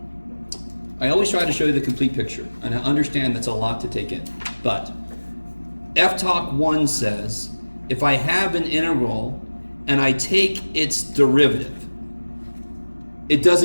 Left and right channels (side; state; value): both; inverted; correlation -1.00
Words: I always try to show you the complete picture, and I understand that's a lot to take in. But FTOC 1 says, if I have an integral and I take its derivative, it